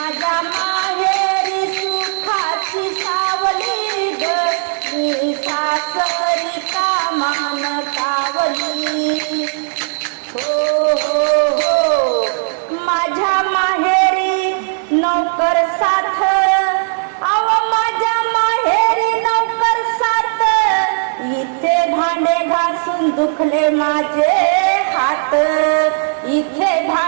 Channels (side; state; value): left; silent; digital silence